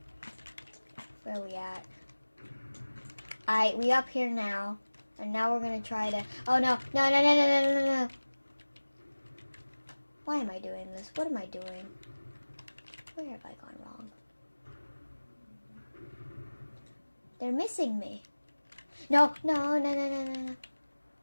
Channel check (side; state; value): both; inverted; correlation -1.00